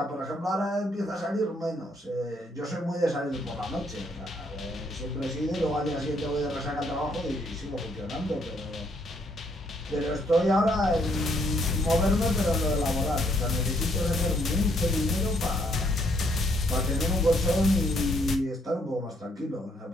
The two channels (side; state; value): both; normal; correlation 0.70